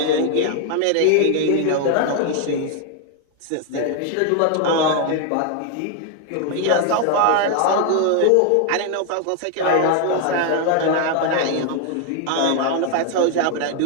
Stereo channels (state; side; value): different; both; correlation 0.00